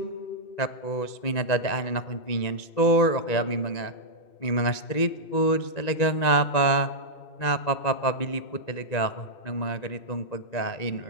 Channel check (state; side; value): late; right; 2.0 ms